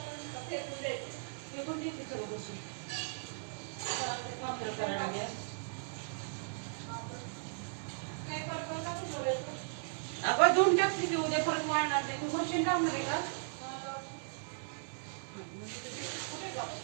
पण देते सगळं बसून. पापड करायला घ्या. आपण धुवून टाकली की उद्या परत वाढणार नाही. तू मशीन लावणार आहे का?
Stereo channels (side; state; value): left; silent; digital silence